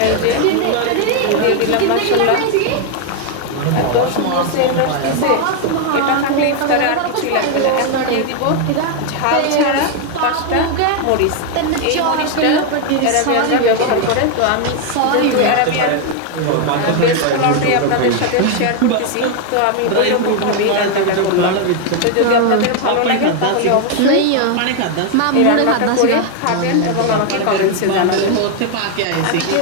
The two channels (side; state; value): both; different; correlation 0.01